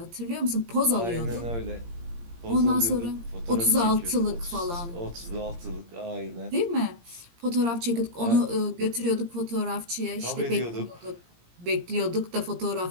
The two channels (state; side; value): late; left; 17 ms